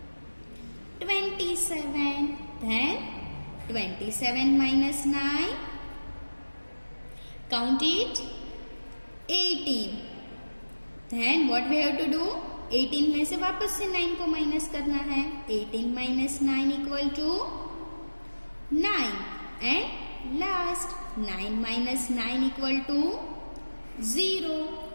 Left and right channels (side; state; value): both; inverted; correlation -1.00